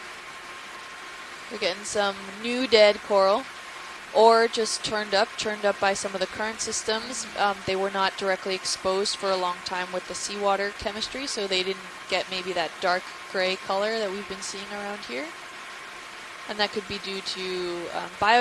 We're getting some new dead coral, or just turned up by some of the current systems. They were not directly exposed for a long time with the seawater chemistry, so they didn't get maybe that dark gray color that we've been seeing around here. And that could be due to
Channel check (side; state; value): both; identical; correlation 1.00